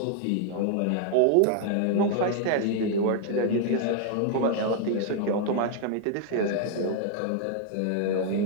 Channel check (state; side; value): different; both; correlation 0.00